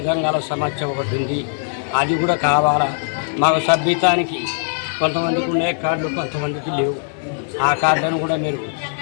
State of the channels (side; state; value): right; silent; digital silence